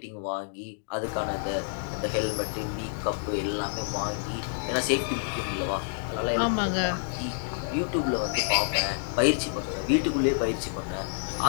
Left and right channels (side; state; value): right; silent; digital silence